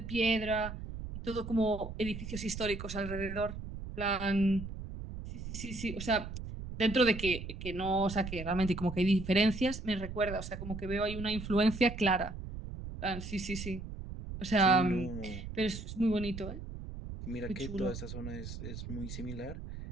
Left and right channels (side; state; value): right; noise; rumble, 9 dB below the sound